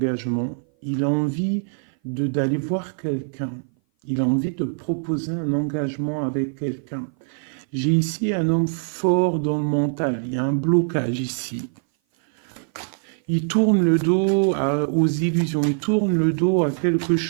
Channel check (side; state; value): left; silent; 57 dB below the other